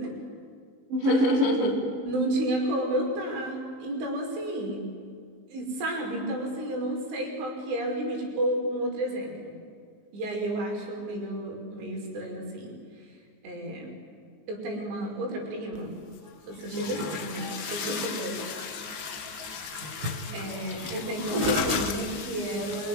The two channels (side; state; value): left; late; 19 ms